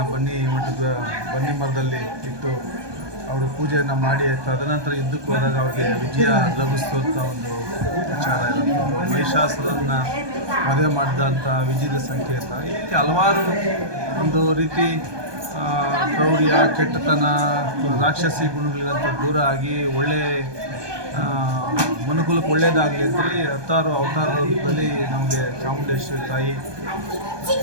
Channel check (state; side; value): late; left; 1.2 ms